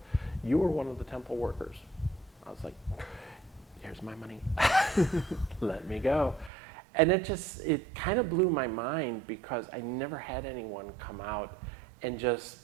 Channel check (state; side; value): drops out; left; at 6.5 s